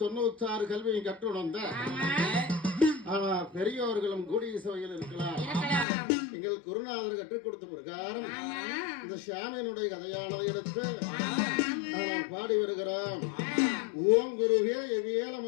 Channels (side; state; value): right; drops out; at 5.9 s